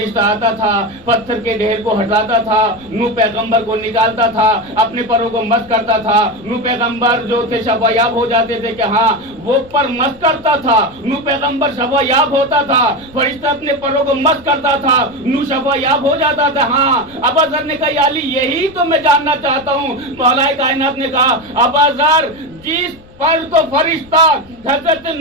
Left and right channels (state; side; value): noise; left; rumble, 25 dB below the sound